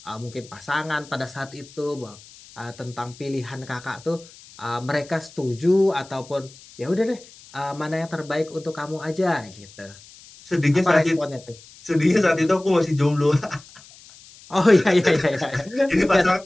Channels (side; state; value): left; noise; hiss, 22 dB below the sound